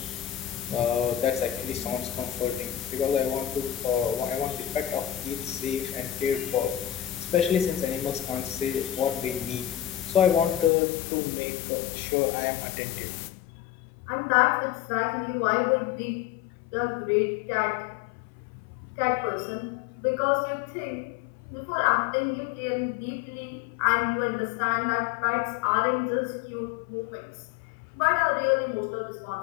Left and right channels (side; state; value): right; drops out; at 10.7 s